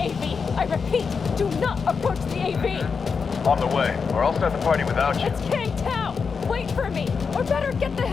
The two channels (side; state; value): right; quieter; 5.5 dB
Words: I repeat, do not approach the AV. On the way, or I'll start the party without you. It's Kang Tao. Wait for me, or better get the